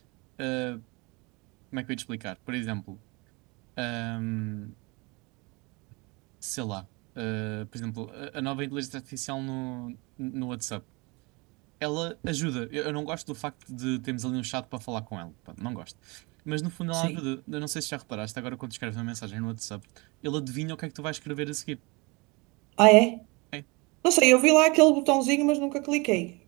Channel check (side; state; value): left; quieter; 27.1 dB